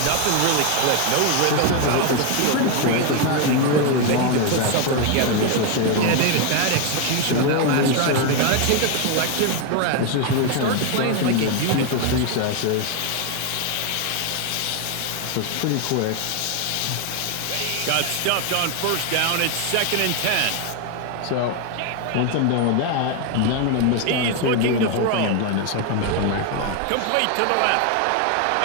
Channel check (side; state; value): both; different; correlation 0.01